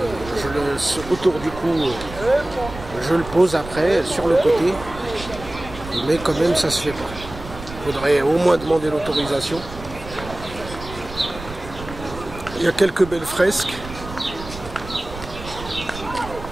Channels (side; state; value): right; noise; rumble, 13 dB below the sound